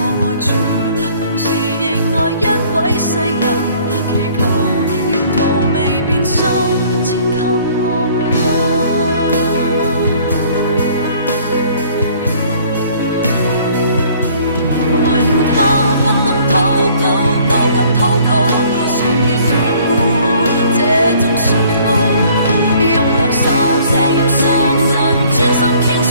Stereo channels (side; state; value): both; inverted; correlation -0.57